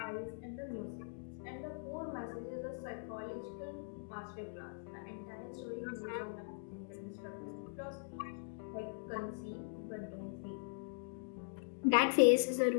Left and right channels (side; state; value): right; silent; digital silence